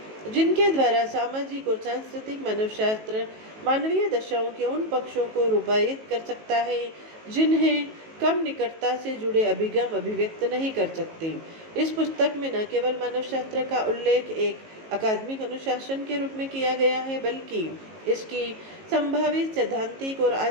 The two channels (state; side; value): late; left; 18 ms